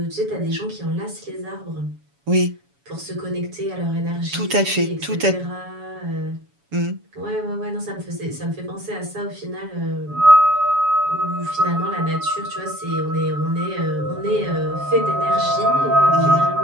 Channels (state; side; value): late; left; 7.1 ms